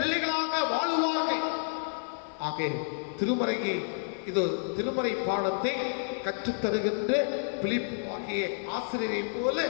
வாழுவார்கள். ஆக திருமறை பாடத்தை கற்றுத்தருகின்ற பிலிப்பு ஆகிய ஆசிரியரை போல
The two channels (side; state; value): right; silent; 58 dB below the other